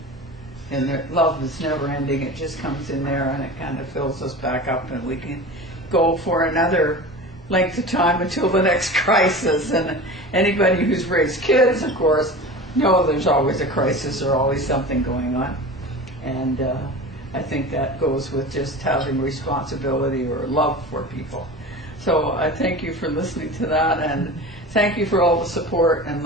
the love is never ending. It just comes in there and it kind of fills us back up, and we can go for another length of time until the next crisis. And anybody who's raised kids, of course, know there's always a crisis or always something going on. And I think that goes with just having responsibility or love for people. So I thank you for listening to that, and thank you for all the support and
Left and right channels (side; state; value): both; normal; correlation 0.33